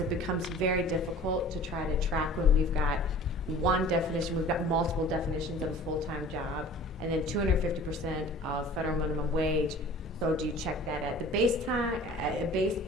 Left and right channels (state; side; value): normal; both; correlation 0.45